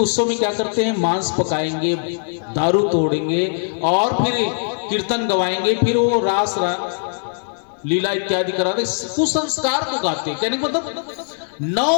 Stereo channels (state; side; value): silent; right; digital silence